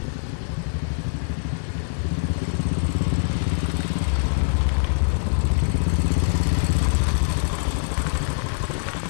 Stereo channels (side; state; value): right; silent; 56 dB below the other